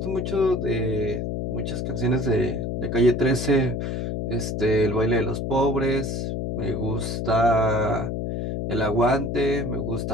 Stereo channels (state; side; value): noise; left; hum, 2 dB below the sound